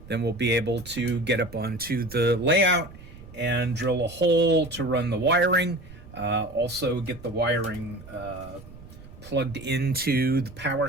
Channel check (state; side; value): noise; right; rumble, 18 dB below the sound